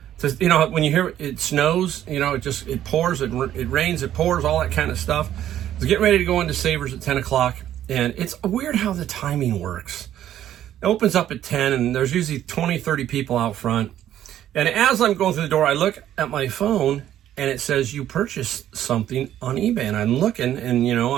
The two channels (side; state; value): left; quieter; 11.6 dB